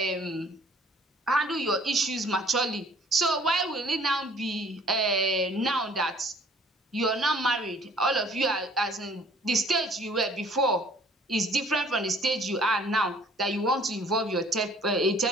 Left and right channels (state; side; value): normal; both; correlation 0.56